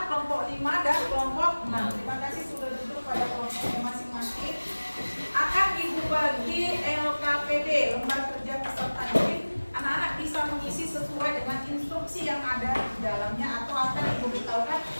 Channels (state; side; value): inverted; both; correlation -1.00